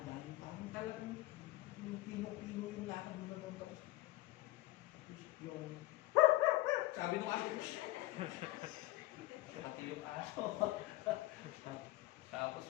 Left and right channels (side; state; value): right; quieter; 18.1 dB